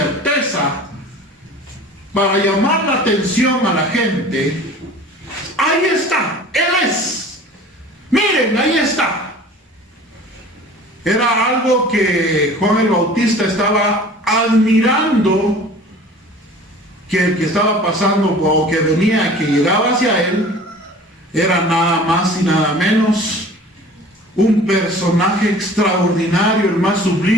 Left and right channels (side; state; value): both; normal; correlation 0.44